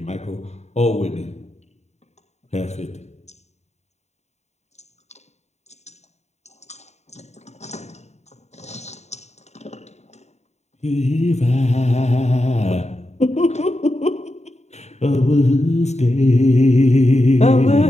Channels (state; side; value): late; right; 0.32 ms